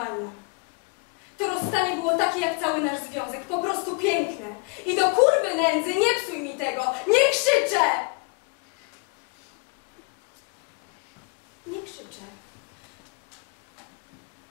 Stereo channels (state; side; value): quieter; right; 32.2 dB